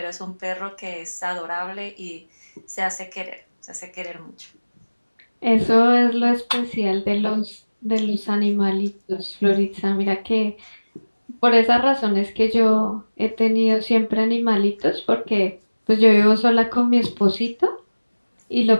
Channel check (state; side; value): inverted; both; correlation -1.00